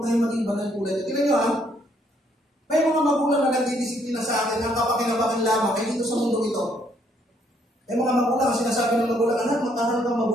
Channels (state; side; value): normal; both; correlation 0.69